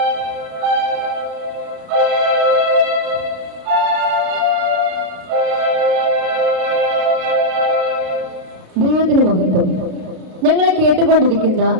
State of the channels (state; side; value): late; left; 33 ms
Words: ദൈവത്തിന് മഹത്വം. ഞങ്ങളെ കേട്ടുകൊണ്ടിരിക്കുന്ന